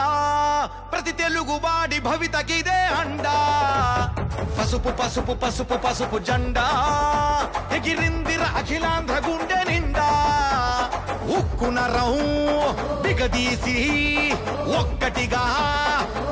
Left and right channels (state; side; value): identical; both; correlation 1.00